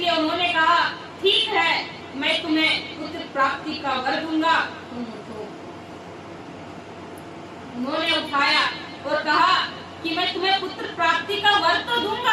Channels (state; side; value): identical; both; correlation 1.00